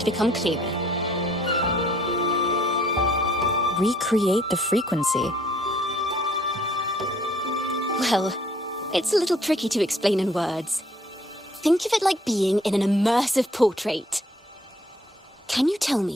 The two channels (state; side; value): normal; both; correlation 0.61